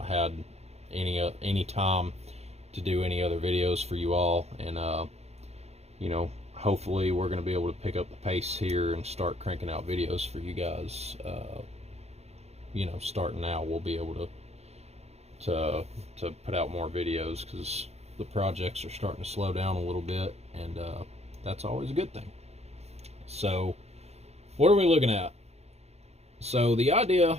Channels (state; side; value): late; left; 0.31 ms